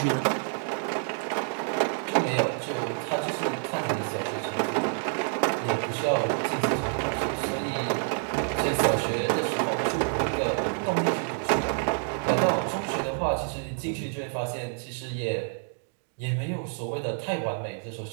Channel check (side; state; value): left; silent; 57 dB below the other